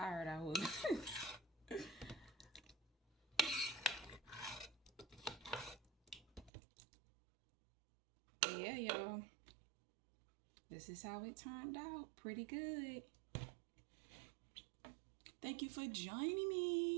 I was. But yeah, y'all. This is how it turned out. Pretty good. Thank you for joining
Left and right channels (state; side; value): drops out; left; at 6.5 s